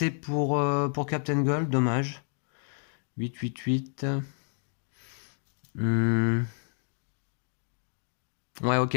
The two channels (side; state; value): right; silent; 57 dB below the other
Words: pour Captain Gold, dommage. 8, 8, 8. Ouais,